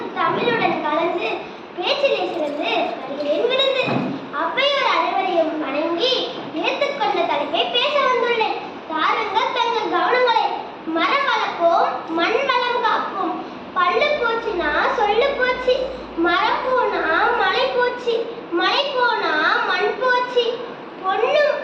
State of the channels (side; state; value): both; identical; correlation 1.00